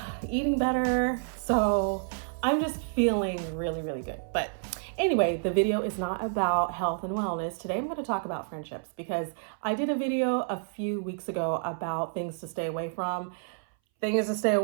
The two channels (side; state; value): left; silent; 58 dB below the other